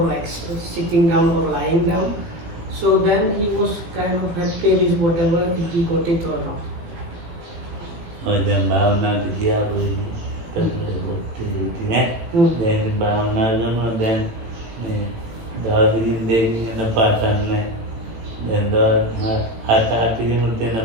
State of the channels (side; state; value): left; late; 18 ms